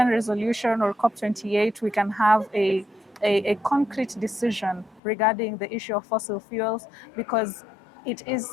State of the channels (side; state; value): right; drops out; at 5.0 s